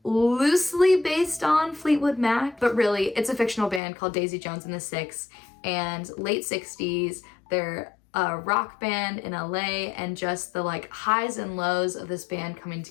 loosely based on Fleetwood Mac, but really it's a fictional band called Daisy Jones and the Six. And late 60s, they're a rock band in LA, and just the like highs and lows of this band coming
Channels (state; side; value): drops out; right; at 3.8 s